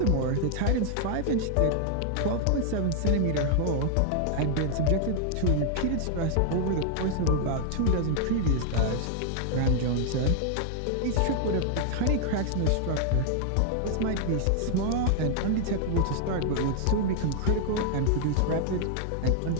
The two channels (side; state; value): both; different; correlation 0.00